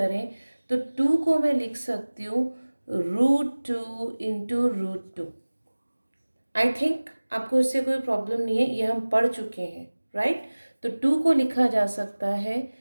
तो 2 को मैं लिख सकती हूँ √2 इंटू √2। आई थिंक आपको इससे कोई प्रॉब्लम नहीं है, ये हम पढ़ चुके हैं, राइट। तो 2 को लिखा जा सकता है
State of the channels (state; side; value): inverted; both; correlation -1.00